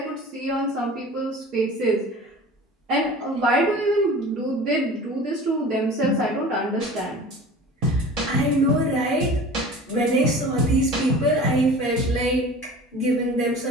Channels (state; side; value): normal; both; correlation 0.40